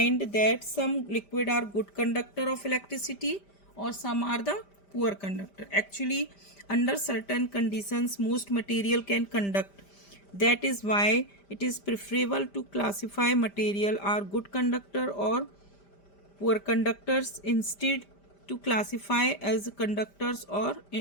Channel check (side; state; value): right; late; 5.1 ms